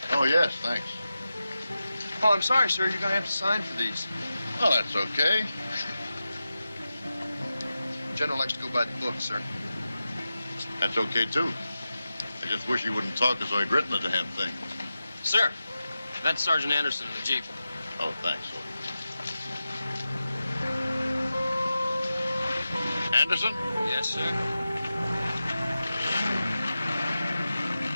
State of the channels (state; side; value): inverted; both; correlation -0.93